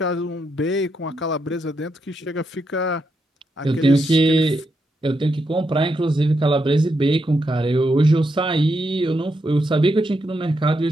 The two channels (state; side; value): normal; both; correlation 0.82